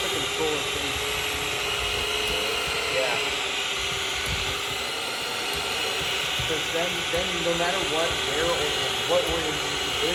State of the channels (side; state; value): both; identical; correlation 1.00